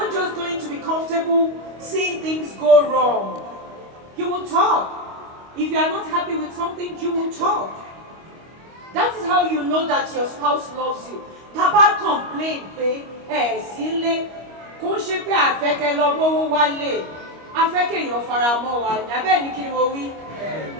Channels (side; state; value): left; late; 25 ms